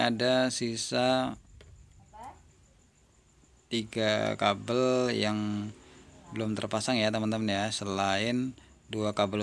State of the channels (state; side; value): identical; both; correlation 1.00